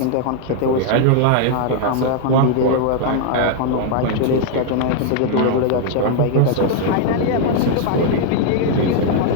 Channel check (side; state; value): both; different; correlation 0.00